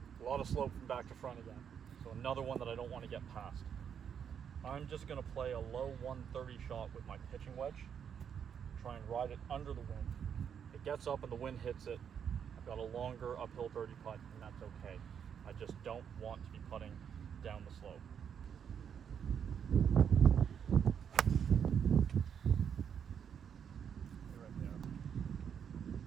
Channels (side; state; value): left; quieter; 7.9 dB